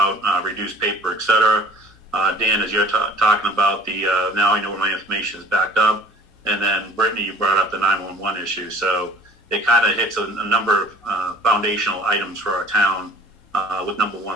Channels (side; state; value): both; normal; correlation 0.50